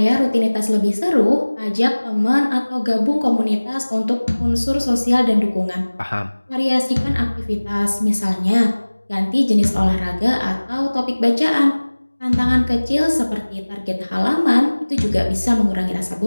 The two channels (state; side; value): inverted; both; correlation -1.00